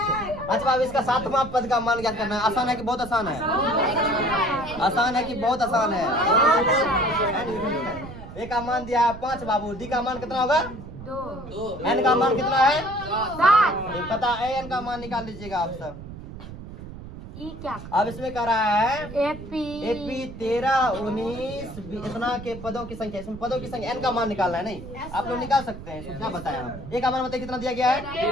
अच्छा अब इसका 7वां पद का मान क्या करना है? आसान है कि बहुत आसान है? आसान है कि बहुत आसान है? ए का मान दिया है 5 बाबू, डी का मान कितना होगा? 2। एन का मान कितना है? 7। पता है, एन का मान निकाल लीजिएगा आप सब। ई क्या? अब इसमें कह रहा है एपी 13 19 इतना के पदों की संख्या, इसमें पदों की संख्या एन का मान निकालना है। नहीं आप लोग निकाल सकते हैं, इसमें क्या बताया हम? ए का मान बताइए कितना दिया गया है?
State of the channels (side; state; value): right; noise; rumble, 13 dB below the sound